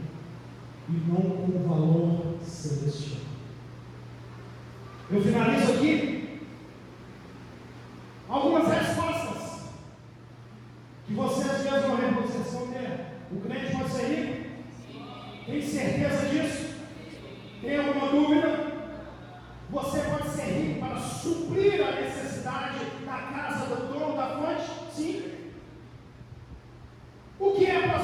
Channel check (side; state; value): both; identical; correlation 1.00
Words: e não com o valor celestial. Eu finalizo aqui algumas respostas que vocês mesmos vão responder. O crente pode ser rico? Tem certeza disso? Tem alguma dúvida? Você pode ser rico para suprir a necessidade da casa do dono da fonte? Sim. O que é